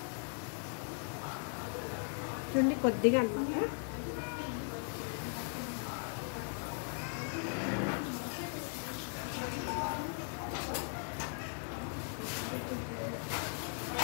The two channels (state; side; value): silent; right; 52 dB below the other